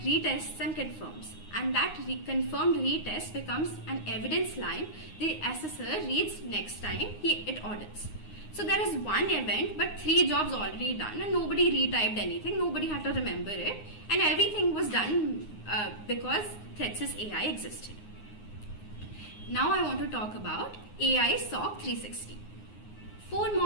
retests and confirms. And that confirmed retest becomes an evidence line the assessor reads next time it audits. So there is one event, but 3 jobs already done, and nobody retyped anything, nobody had to remember it, and everything was done because ThreatSys AI existed. Now I want to talk about AI SOC 360. 4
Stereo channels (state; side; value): late; right; 9.6 ms